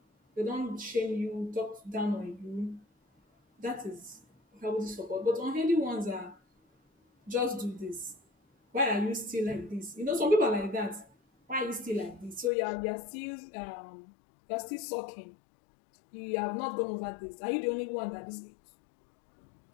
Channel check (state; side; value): drops out; right; at 12.5 s